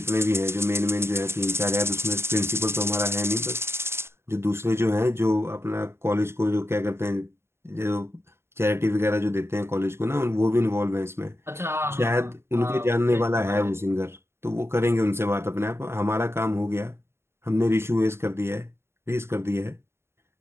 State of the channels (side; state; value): left; late; 0.12 ms